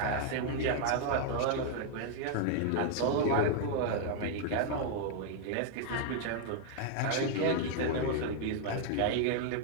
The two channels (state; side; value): different; both; correlation 0.00